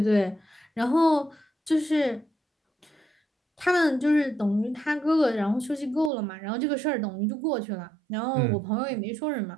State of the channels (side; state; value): left; drops out; at 6.1 s